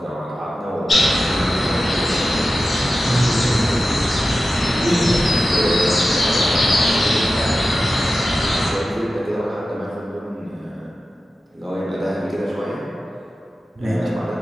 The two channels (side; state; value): both; normal; correlation 0.93